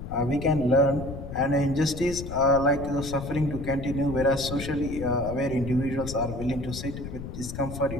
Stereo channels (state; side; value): noise; left; rumble, 9 dB below the sound